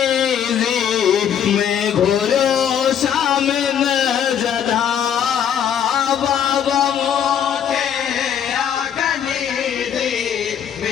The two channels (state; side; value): quieter; right; 8.8 dB